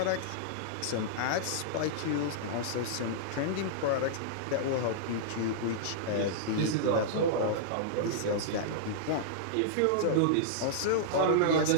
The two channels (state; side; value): different; both; correlation -0.02